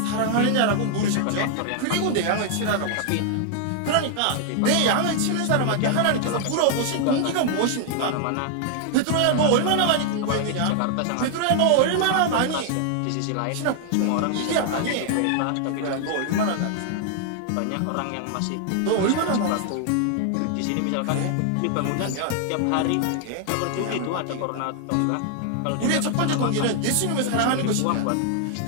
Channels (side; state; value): both; different; correlation 0.00